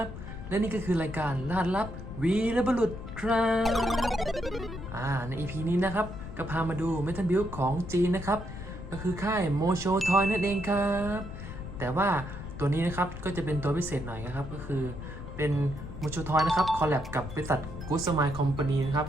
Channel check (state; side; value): noise; left; rumble, 10 dB below the sound